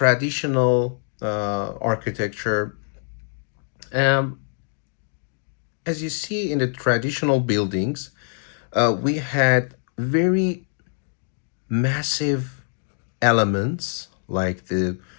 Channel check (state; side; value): silent; right; digital silence